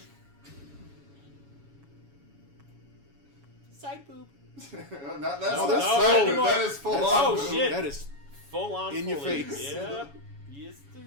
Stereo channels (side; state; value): left; late; 7.1 ms